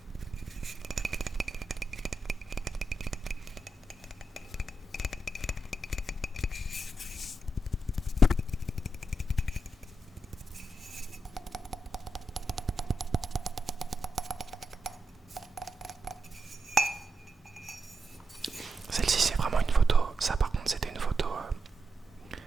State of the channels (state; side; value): normal; both; correlation 0.86